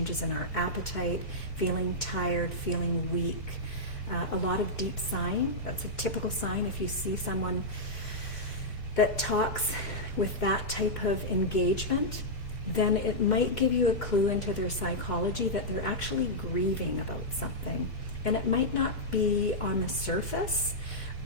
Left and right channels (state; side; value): late; right; 2.1 ms